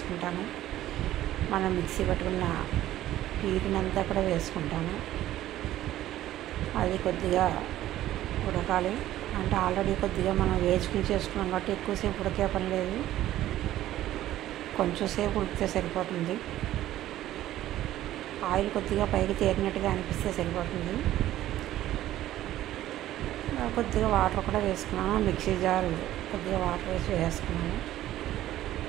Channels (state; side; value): quieter; left; 13.8 dB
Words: మనం మిక్సీ పట్టుకున్న ప్యూరీని అంతా కూడా వేసుకుంటాను. అది కొద్దిగా ఉడకాలి. అంటే ఆల్రెడీ కొద్దిగా మనం వేసుకుని చేసుకున్నాం కాబట్టి ఎక్కువసేపు ఉడికే పని లేదు. కొంచెం సేపు ఉడికితే సరిపోతుంది. ఆయిల్ కొద్దిగా పైకి తేరినట్టుగా అనిపిస్తే సరిపోతుంది. కొద్దిగా వాటర్ కూడా వేసుకున్నాను. మిక్సీ జార్ కొద్దిగా వాటర్ వేసి వేసుకున్నాను.